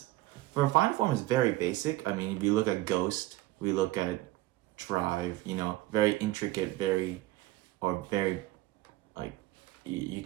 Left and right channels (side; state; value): left; quieter; 17.6 dB